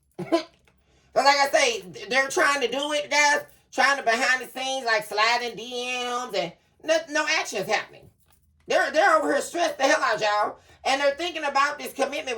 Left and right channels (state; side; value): identical; both; correlation 1.00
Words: But like I say, they're trying to do it, guys, trying to behind the scenes, like sliding DMs and no actions happening. They're over here stressed the hell out, y'all. And they're thinking about this commitment